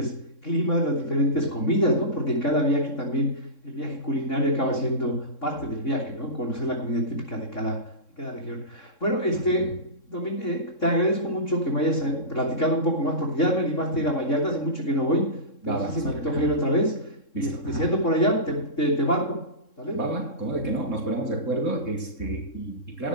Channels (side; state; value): right; late; 3.7 ms